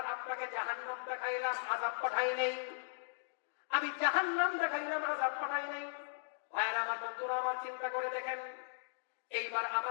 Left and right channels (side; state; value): right; silent; digital silence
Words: আপনাকে জাহান্নাম দেখাইলাম, আযাব পাঠাই নাই। আমি জাহান্নাম দেখাইলাম, আযাব পাঠাই নাই। ভাইরা আমার, বন্ধুরা আমার, চিন্তা করে দেখেন। এইবার